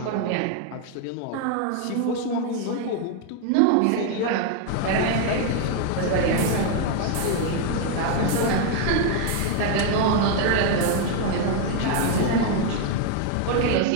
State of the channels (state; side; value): different; both; correlation 0.01